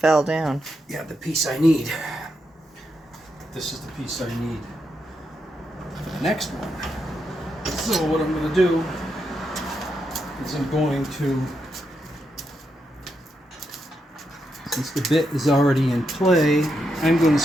down. Yeah, the piece I need. This is the piece I need for the next one. So what I'm going to do is I'm going to, since the bit is already in play, I'm going to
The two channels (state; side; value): normal; both; correlation 0.83